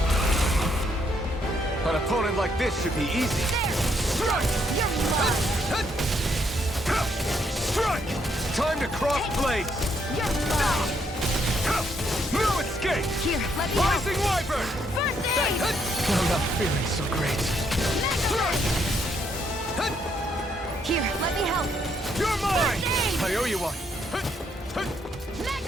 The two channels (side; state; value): both; normal; correlation 0.73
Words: An opponent like this should be easy. Strike! You're mine! Strike! Time to cross blades! You're mine! No escape! Here, let me help! Rising Wyvern! First aid! I'm not feeling so great. Here, let me help! You're mine! First aid! I owe you one.